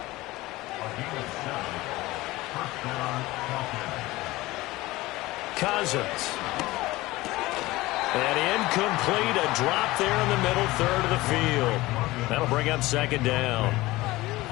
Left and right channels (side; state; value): right; quieter; 19.2 dB